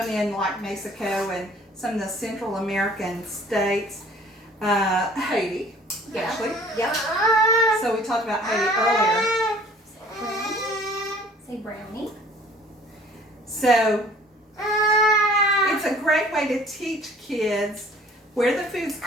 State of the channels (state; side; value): normal; both; correlation 0.52